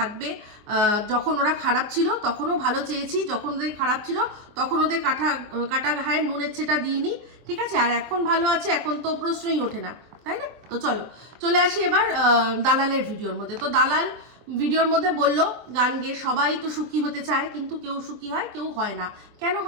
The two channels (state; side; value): late; left; 24 ms